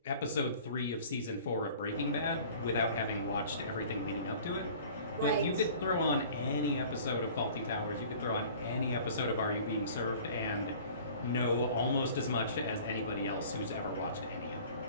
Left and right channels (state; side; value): inverted; both; correlation -0.47